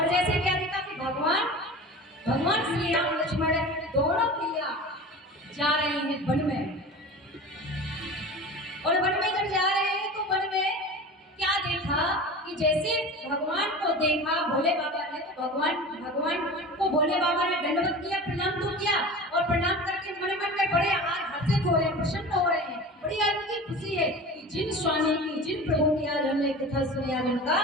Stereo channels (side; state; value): both; normal; correlation 0.35